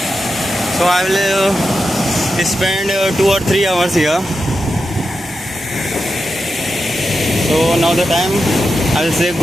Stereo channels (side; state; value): both; normal; correlation 0.89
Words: So I will spend 2 or 3 hours here. So now the time I will say